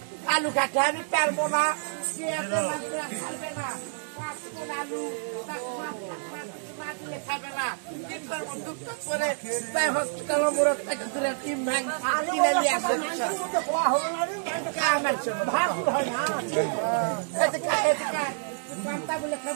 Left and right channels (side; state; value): left; silent; digital silence